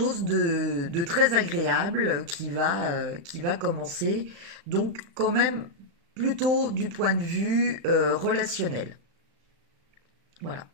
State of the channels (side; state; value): left; late; 36 ms